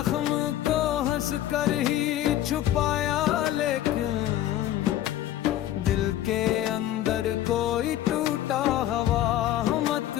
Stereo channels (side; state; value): right; quieter; 12.9 dB